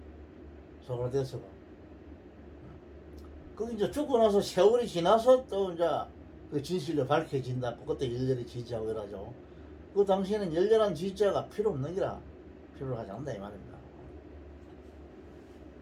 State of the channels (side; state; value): both; identical; correlation 1.00